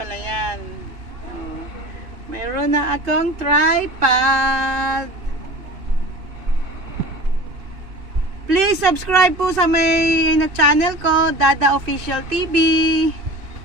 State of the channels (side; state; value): left; late; 2.5 ms